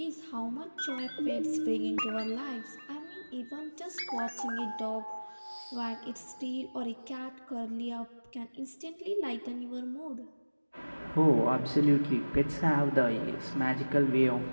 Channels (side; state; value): both; inverted; correlation -1.00